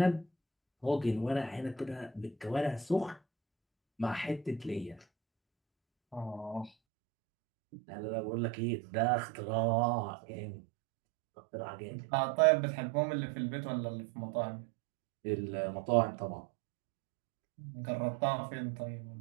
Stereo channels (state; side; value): drops out; left; at 6.7 s